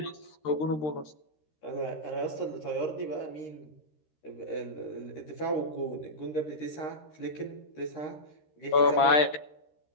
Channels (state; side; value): late; right; 13 ms